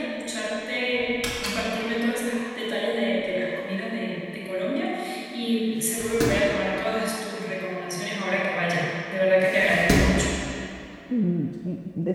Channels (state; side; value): identical; both; correlation 1.00